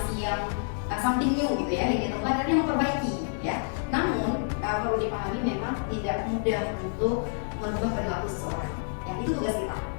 yang something new gitu ya, yang dia temukan dan dia memperbaiki ya. Namun perlu dipahami memang tidak mudah untuk merubah perilaku seseorang. Yang itu tugas kita,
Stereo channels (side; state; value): right; silent; digital silence